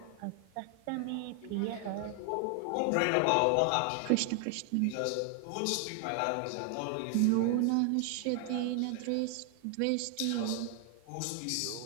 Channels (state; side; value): different; both; correlation 0.00